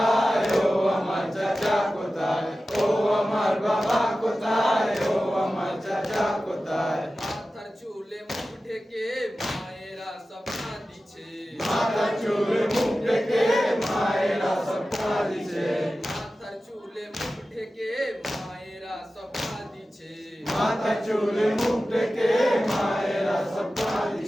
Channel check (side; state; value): both; normal; correlation 0.95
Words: ও আমার চাচা কোথায়? ও আমার বাবা কোথায়, ও আমার চাচা কোথায়? মাথার চুলে মুখ ঢেকে মায়েরা স্বপ্না দিছে। মাথার চুলে মুখ ঢেকে মায়েরা স্বপ্না দিছে। মাথার চুলে মুখ ঢেকে মায়েরা স্বপ্না দিছে। মাথা চুলে মুখ ডেকে মায়েরা সব